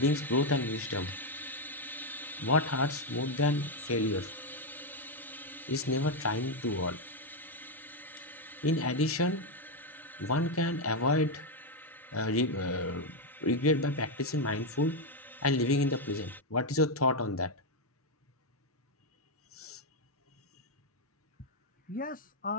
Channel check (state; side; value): normal; both; correlation 0.03